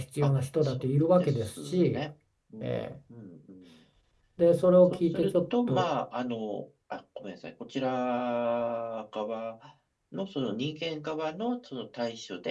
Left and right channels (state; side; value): identical; both; correlation 1.00